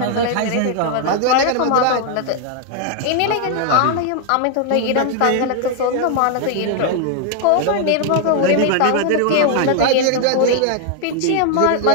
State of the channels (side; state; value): both; different; correlation 0.00